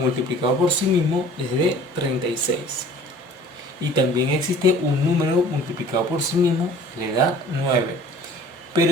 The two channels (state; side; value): normal; both; correlation 0.49